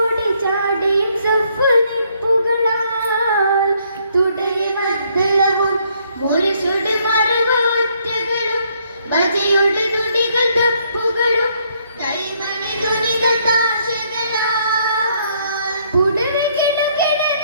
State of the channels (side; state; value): both; inverted; correlation -0.69